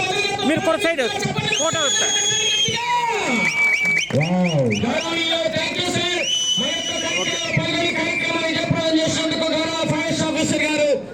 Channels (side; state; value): right; noise; hum, 27 dB below the sound